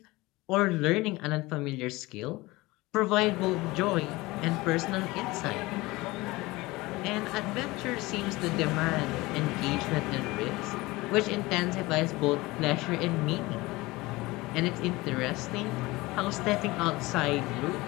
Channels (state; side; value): quieter; right; 21.0 dB